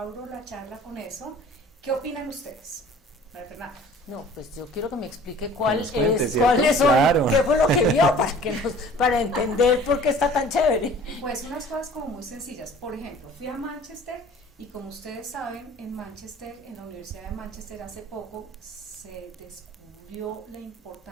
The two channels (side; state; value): both; normal; correlation 0.48